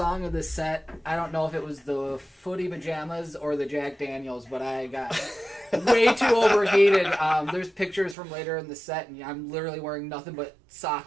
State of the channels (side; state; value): left; drops out; at 8.2 s